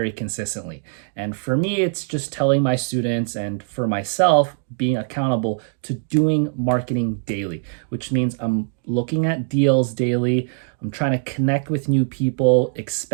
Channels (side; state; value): left; silent; digital silence